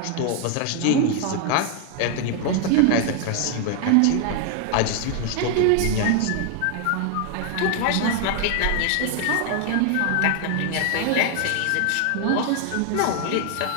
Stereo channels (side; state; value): both; different; correlation 0.00